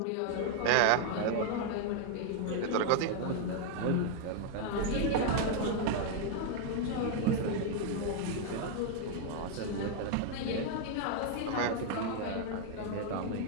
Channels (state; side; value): different; both; correlation 0.00